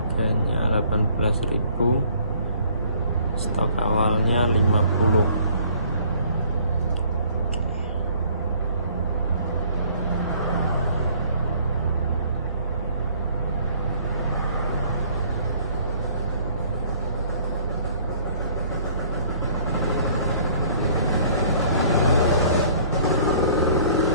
18.000, stok awalnya 50.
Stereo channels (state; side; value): inverted; both; correlation -0.56